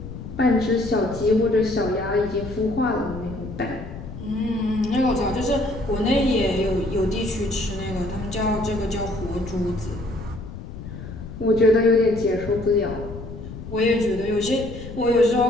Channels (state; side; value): noise; left; rumble, 11 dB below the sound